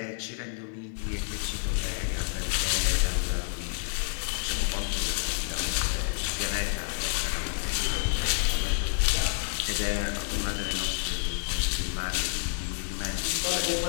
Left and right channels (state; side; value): silent; right; digital silence